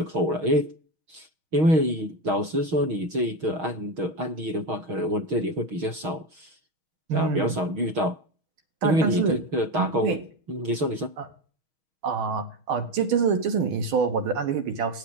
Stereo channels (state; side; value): late; left; 6.3 ms